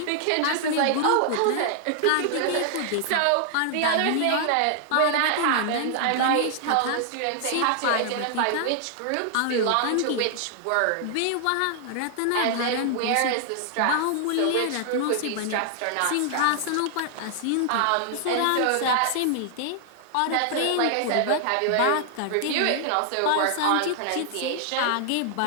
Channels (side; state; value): both; different; correlation 0.00